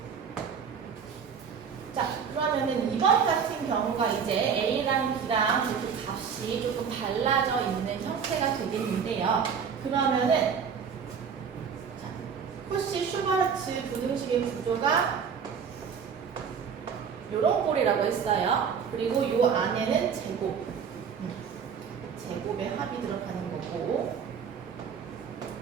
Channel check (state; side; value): quieter; left; 6.8 dB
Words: 자, 그러면은 이번 같은 경우가 이제 A랑 B랑 이렇게 값이 조금 달라져 있는 형태가 되겠는데요. 그러면은 자, 코시-슈바르츠 부등식의 구조가 요런 꼴이라고 했어요. 그리고 요 안에는 제곱의 합이 들어가는 거고